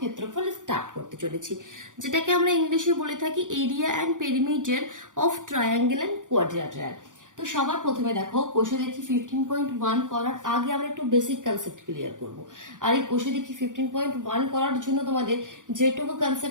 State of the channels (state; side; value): late; left; 0.87 ms